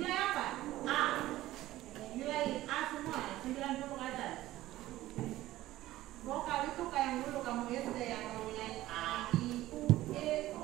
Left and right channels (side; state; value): left; quieter; 15.7 dB